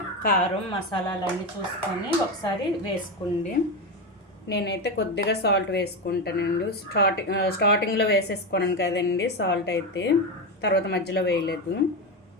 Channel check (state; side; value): normal; both; correlation 0.15